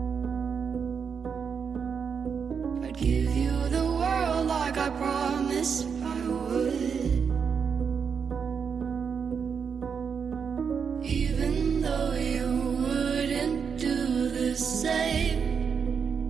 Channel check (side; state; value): left; quieter; 6.5 dB